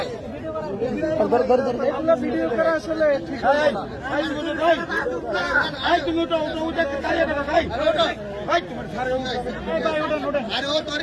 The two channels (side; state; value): both; identical; correlation 1.00